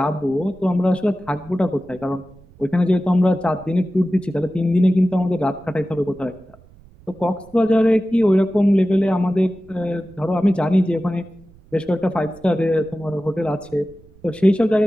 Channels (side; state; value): right; noise; rumble, 26 dB below the sound